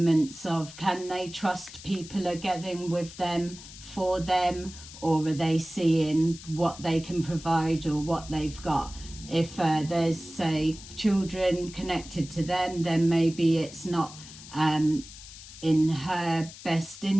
of, can they trust people are getting with them for them, or are they seeing what they can provide or what they've got? If there's, say, children connected to them, then maybe it's not in her best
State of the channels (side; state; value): left; noise; hiss, 16 dB below the sound